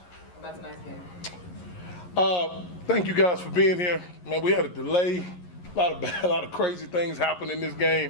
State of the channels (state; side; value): late; right; 11 ms